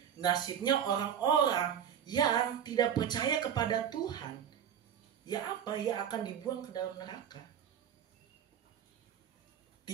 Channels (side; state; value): left; quieter; 8.9 dB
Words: nasibnya orang-orang yang tidak percaya kepada Tuhan. Ya apa? Ya akan dibuang ke dalam neraka.